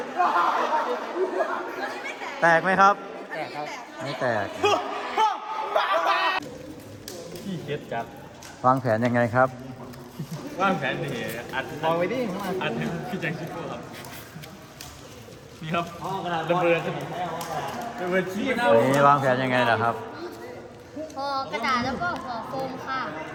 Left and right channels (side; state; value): both; identical; correlation 1.00